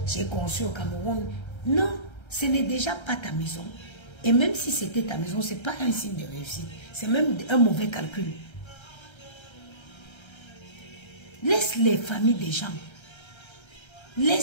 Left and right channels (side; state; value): right; late; 1.3 ms